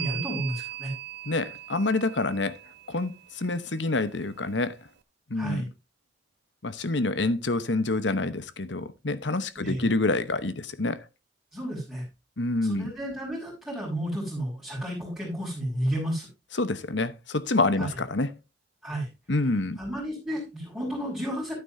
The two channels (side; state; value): both; normal; correlation 0.42